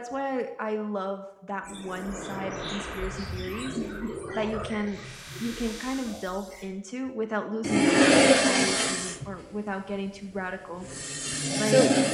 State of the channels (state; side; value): identical; both; correlation 1.00